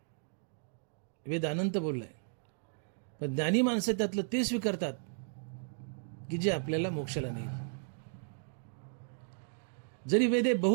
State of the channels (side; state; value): left; silent; digital silence